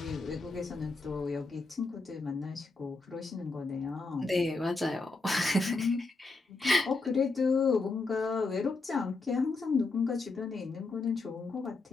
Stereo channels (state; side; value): quieter; right; 3.6 dB